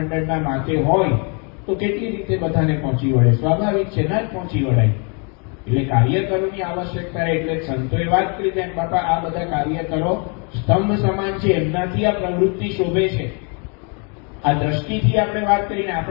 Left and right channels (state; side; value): quieter; right; 36.2 dB